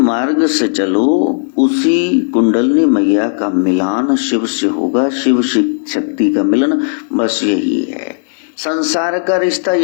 से चलो, उसी कुंडलनी मैया का मिलान शिव से होगा, शिव शक्ति का मिलन, बस यही है। संसार का रिश्ता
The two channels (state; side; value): silent; right; digital silence